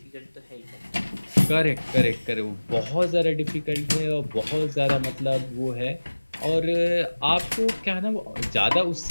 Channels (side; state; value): both; inverted; correlation -1.00